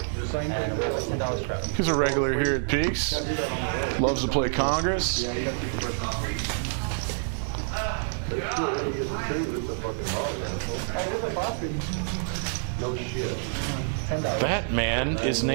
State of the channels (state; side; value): silent; left; 56 dB below the other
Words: He's a regular here at Peaks. Loves to play Congress. That man is